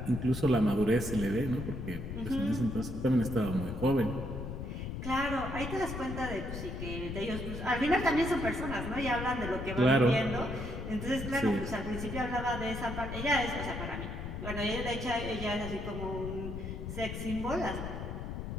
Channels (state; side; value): noise; left; rumble, 6 dB below the sound